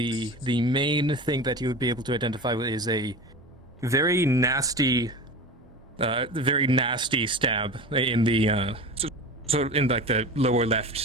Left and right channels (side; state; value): both; normal; correlation 0.31